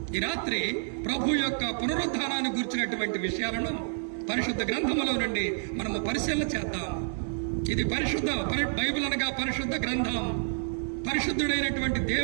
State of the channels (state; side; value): silent; left; digital silence